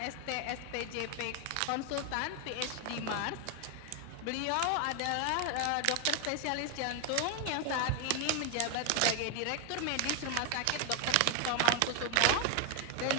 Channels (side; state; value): both; different; correlation 0.01